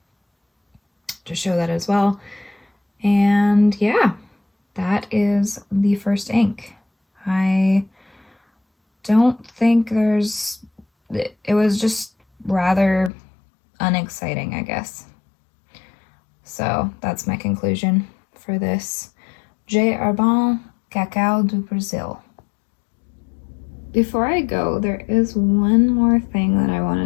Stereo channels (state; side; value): drops out; right; at 13.1 s